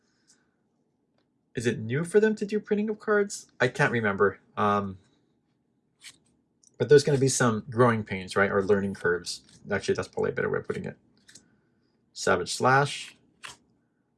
Is it new for them to do printing of cards? I can't remember. But there's going to be some growing pains, right? Or learning curves. Actually, that's probably a better way of putting it. Savage Slash.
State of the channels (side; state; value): both; identical; correlation 1.00